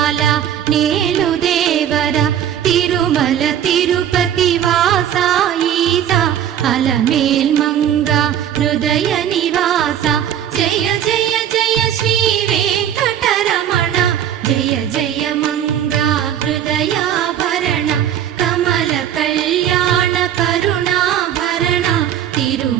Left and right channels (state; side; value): quieter; left; 10.0 dB